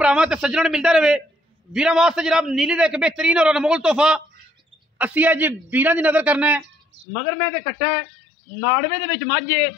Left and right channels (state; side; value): drops out; right; at 7.1 s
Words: भरावां ते सज्जणां नूं मिलदा रहे। वीरां वास्ते जनाब नीली दा एक बेहतरीन और अनमोल तोहफा असीं अज वीरां दी नज़र करना है। मगर मैं ते कट्टा है नाड़वे दे विच मझ